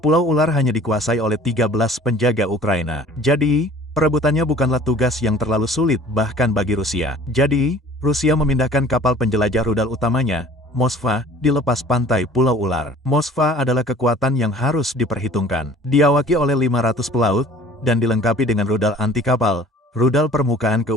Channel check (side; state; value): both; normal; correlation 0.49